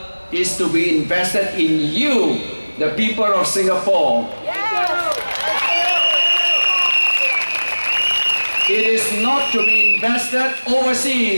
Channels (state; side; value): inverted; both; correlation -1.00